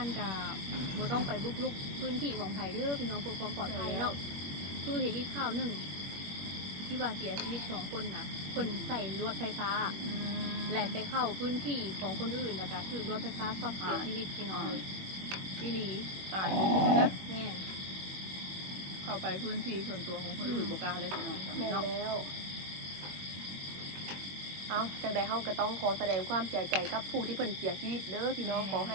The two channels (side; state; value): left; late; 21 ms